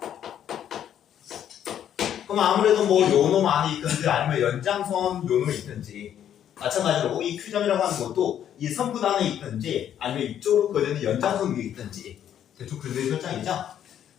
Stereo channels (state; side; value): quieter; right; 10.0 dB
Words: 그럼 아무래도 뭐 요놈 안에 있든지 아니면 연장선 요놈이 있든지 마찬가지로 이 Q점이라고 하는 것도 이 선분 안에 있든지 아니면 이쪽으로 그어지는 연장선 위에 있든지 대충 그런 설정이죠.